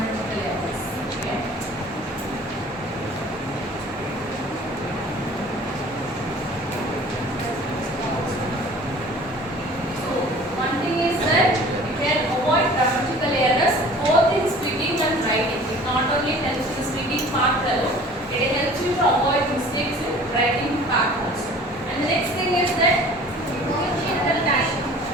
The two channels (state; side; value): normal; both; correlation 0.46